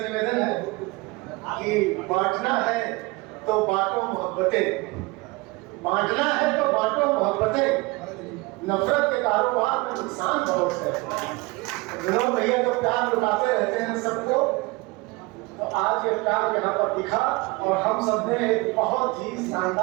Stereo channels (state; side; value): quieter; left; 24.3 dB